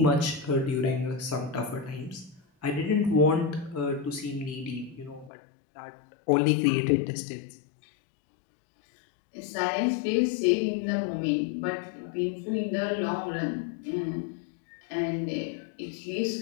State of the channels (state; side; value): drops out; right; at 5.3 s